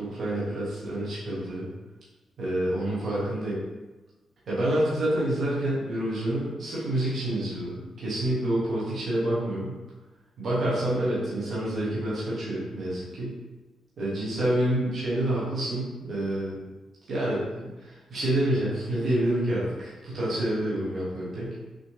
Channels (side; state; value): both; normal; correlation 0.78